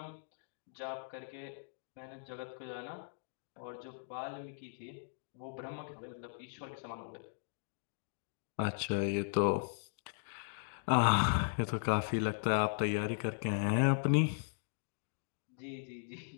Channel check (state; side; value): silent; right; digital silence